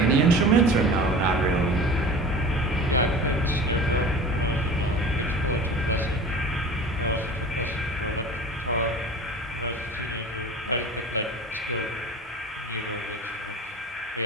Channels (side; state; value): both; normal; correlation 0.38